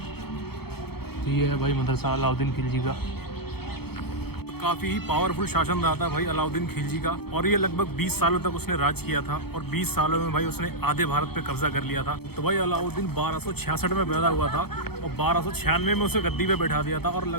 तो ये है भाई मदरसा अलाउद्दीन खिलजी का। काफ़ी ही पावरफुल शासन रहा था भाई अलाउद्दीन खिलजी का। और ये लगभग 20 सालों तक उसने राज किया था और 20 सालों में भाई उसने आधे भारत पे कब्जा कर लिया था। तो भाई अलाउद्दीन 1266 में पैदा हुआ था और 1296 में उसे गद्दी पे बैठा दिया था और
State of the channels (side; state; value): right; late; 0.96 ms